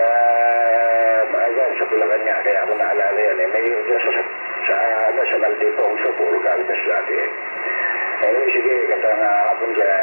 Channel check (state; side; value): inverted; both; correlation -1.00